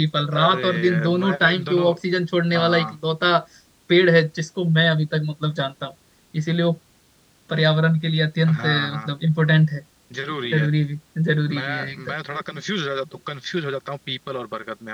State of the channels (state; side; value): identical; both; correlation 1.00